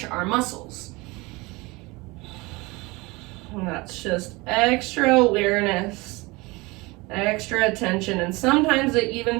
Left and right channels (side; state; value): left; quieter; 24.0 dB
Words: our muscles. And that's just extra awareness, extra attention. And sometimes it